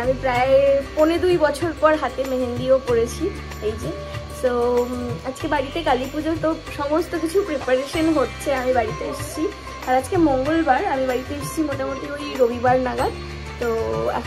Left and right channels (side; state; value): both; identical; correlation 1.00